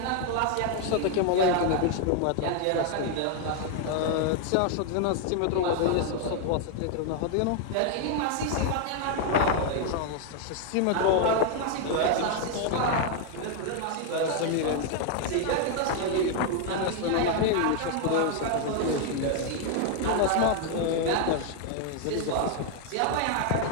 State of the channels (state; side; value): different; both; correlation 0.00